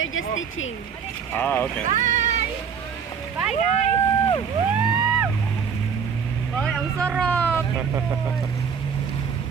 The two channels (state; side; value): quieter; left; 6.7 dB